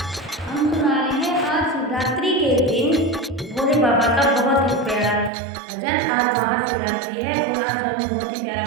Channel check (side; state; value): left; drops out; at 5.3 s